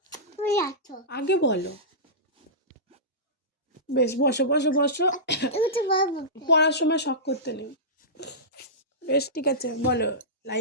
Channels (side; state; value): both; normal; correlation -0.17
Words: তুই আছো আগে বলো বেশ বসো বসো বসো এটা বাবু পড়ার সময় শখ করতে নেই বেশ ঠিক আছে বলো